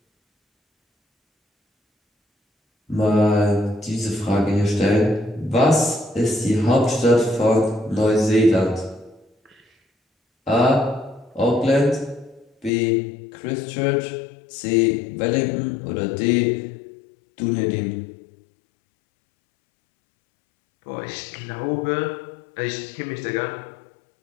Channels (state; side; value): drops out; right; at 12.7 s